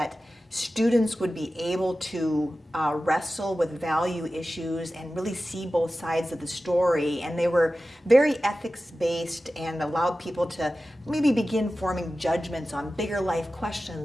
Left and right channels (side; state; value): both; normal; correlation 0.95